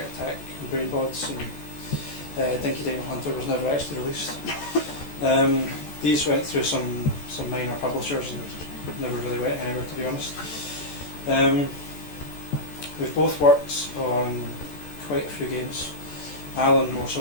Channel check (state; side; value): late; right; 14 ms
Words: Attack, and Brainbods, and Dino Hunter was never actually released. These went through some minor publishers and never really went anywhere, to be honest. We've both worked on quite a few games. Alan more so